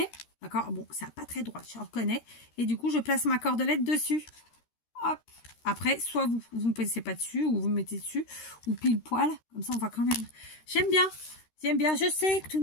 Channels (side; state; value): right; late; 13 ms